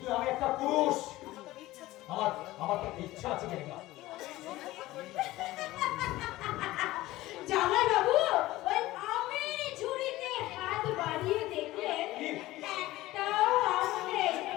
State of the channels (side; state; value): right; quieter; 17.3 dB